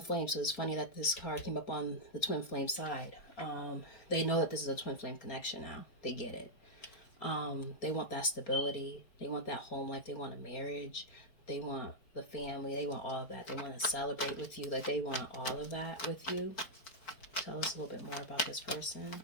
flame, so it's funny that this card came up on the twin flame side. They know that this is a twin flame connection now. They get it. They want that stability. They want that home life. They want a marriage. They want the family. They want all of that. They want to celebrate with you. Like they want all of that with you. Tell us a little bit more about this person.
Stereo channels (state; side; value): late; right; 4.3 ms